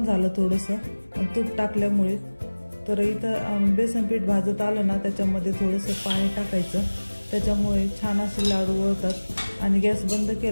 झालं थोडंसं तूप टाकल्यामुळे। तर इथं बेसन पीठ भाजत आलं ना, त्याच्यामध्ये थोडंसं पाणी टाकायचं, त्याच्यामुळे छान असे लाडू वळतात। आणि गॅस बंद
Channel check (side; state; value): both; inverted; correlation -1.00